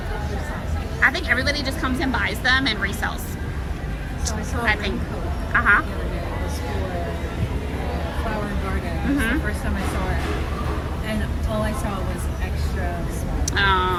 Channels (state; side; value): identical; both; correlation 1.00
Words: I think everybody just comes and buys them and resells. So I saw I think. Uh-huh. the other day. It was for Flower and Garden. It was the first time I saw it. And all I saw was extra